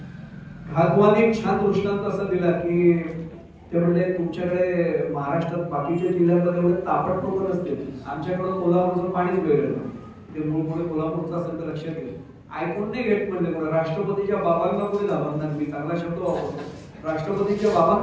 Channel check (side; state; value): both; identical; correlation 1.00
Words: घालबुवाने एक छान दृष्टांत असा दिला की ते म्हणले, तुमच्याकडे महाराष्ट्रात बाकीच्या जिल्ह्यांमध्ये एवढे तापट लोक नसते, आमच्याकडून कोल्हापूरचं पाणीच वेगळं. ते मूळ पुढे कोल्हापूरचं असेल तर लक्षात घ्या. ऐकून नाही घेत म्हणले, राष्ट्रपतीच्या बाबांना कोणी घाबरणार. मी चांगला शब्द वापरतो, राष्ट्रपतीच्या